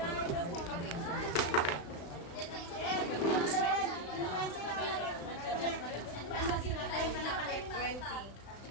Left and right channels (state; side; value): late; right; 35 ms